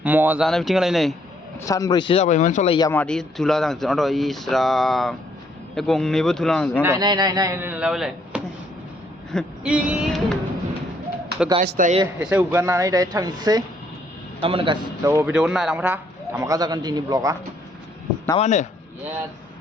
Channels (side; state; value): both; normal; correlation 0.68